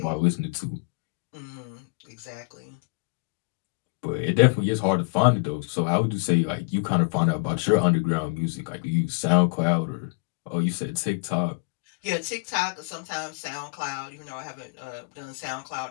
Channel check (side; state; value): right; quieter; 32.1 dB